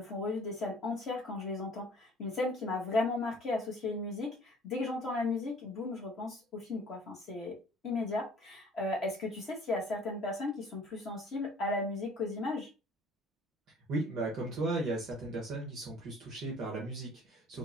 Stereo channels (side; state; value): both; normal; correlation 0.52